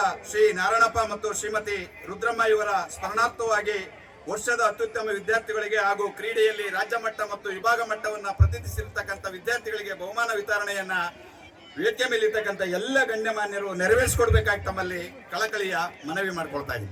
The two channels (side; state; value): both; identical; correlation 1.00